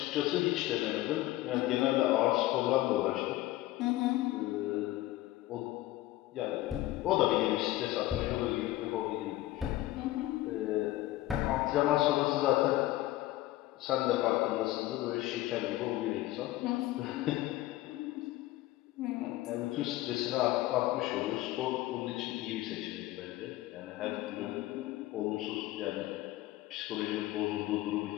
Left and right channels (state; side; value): quieter; right; 16.4 dB